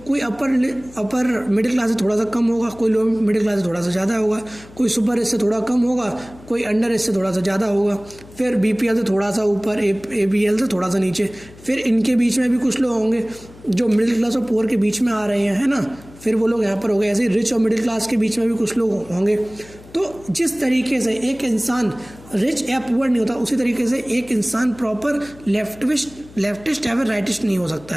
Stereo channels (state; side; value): noise; left; hum, 21 dB below the sound